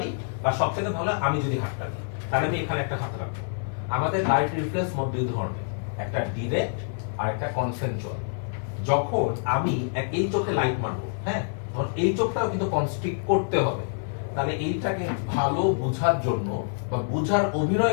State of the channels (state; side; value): silent; right; digital silence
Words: বা সবচেয়ে ভালো আমি যদি হাতটা দিই, তাহলে আমি এখানে একটা হাত রাখবো। আমাদের লাইট রিফ্লেক্স মোট 2 ধরনের, একটা ডিরেক্ট আর একটা কনসেনচুয়াল। যখন আমি এই চোখে লাইট মারবো, হ্যাঁ, তখন এই চোখটাও কিন্তু কনস্ট্রিক্ট করতে হবে। তাহলে এইটাকে ভালো বোঝার জন্য বা বোঝার